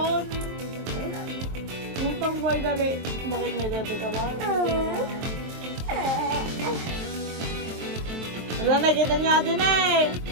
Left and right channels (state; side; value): late; left; 23 ms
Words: Yung pang boy dali. Bakit may dati ka ba? Wala, nakita niya din eh.